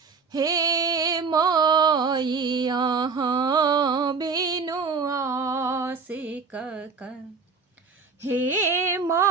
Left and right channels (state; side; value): quieter; left; 5.0 dB